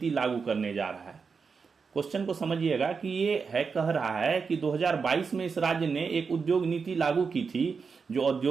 लागू करने जा रहा है। क्वेश्चन को समझिएगा कि ये है कह रहा है कि 2022 में इस राज्य ने एक उद्योग नीति लागू की थी, जो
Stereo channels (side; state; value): left; quieter; 5.4 dB